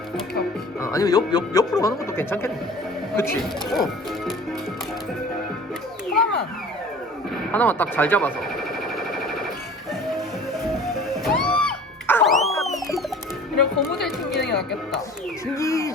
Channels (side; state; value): both; normal; correlation 0.44